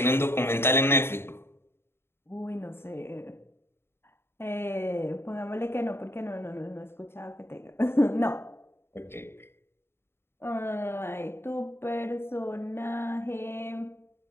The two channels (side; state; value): right; late; 0.11 ms